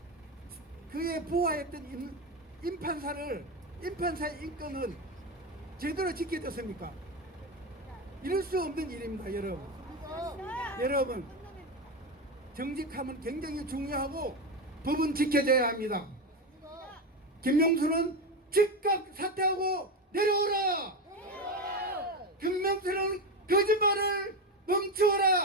부하였던 임판사의 인권을 제대로 지켜줬습니까? 이럴 수 없는 일입니다, 여러분. 여러분, 정직함은 굉장히 중요하고 법은 지켜져야 합니다. 김명수는 즉각 사퇴하고 내려오라! 김명수는 거짓말을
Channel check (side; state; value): both; normal; correlation 0.16